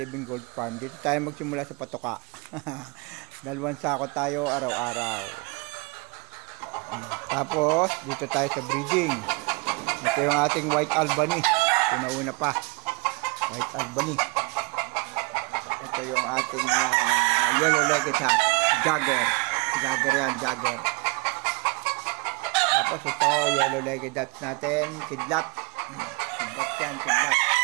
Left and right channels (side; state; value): left; quieter; 27.0 dB